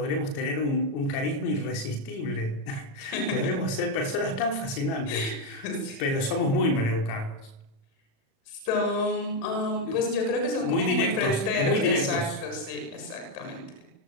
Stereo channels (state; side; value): late; right; 37 ms